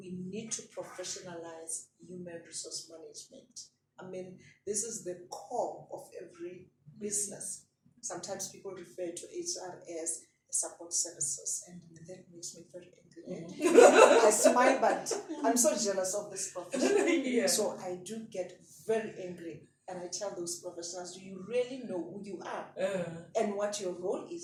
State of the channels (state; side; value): identical; both; correlation 1.00